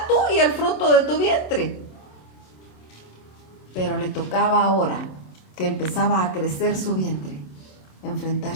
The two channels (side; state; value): right; late; 27 ms